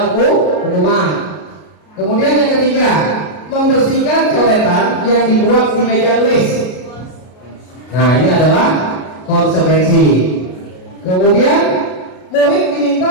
hukuman. Kemudian yang ketiga, membersihkan coretan yang dibuat di meja tulis. Nah ini adalah konsekuensi. Kemudian murid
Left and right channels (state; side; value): late; right; 33 ms